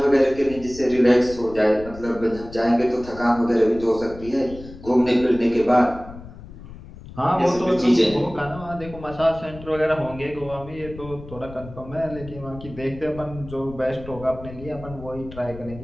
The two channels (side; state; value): left; noise; rumble, 15 dB below the sound